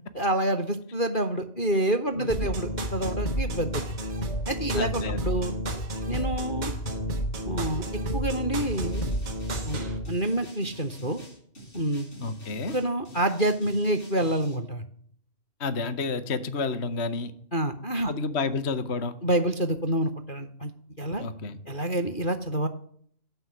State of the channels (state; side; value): late; right; 2.4 ms